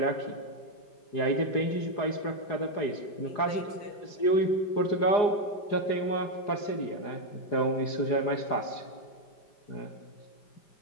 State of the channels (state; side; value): late; right; 4.8 ms